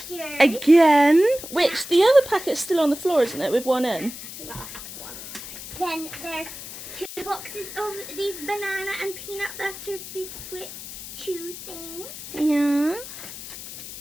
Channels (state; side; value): noise; left; hiss, 12 dB below the sound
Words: Again. Which, the other packet's still on the floor, isn't it, with one in? Last one. Then there's 2 boxes of these banana and peanut butter biscuit chew things. Yeah.